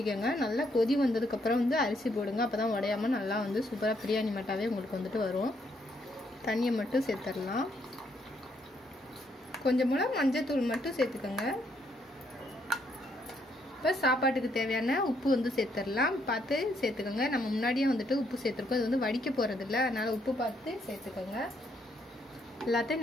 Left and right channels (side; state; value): both; normal; correlation 0.73